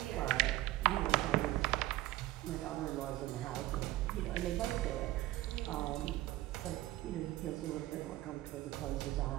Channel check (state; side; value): quieter; left; 16.5 dB